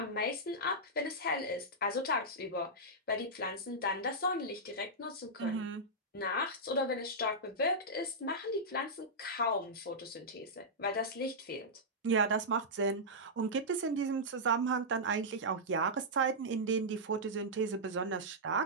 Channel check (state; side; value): normal; both; correlation -0.10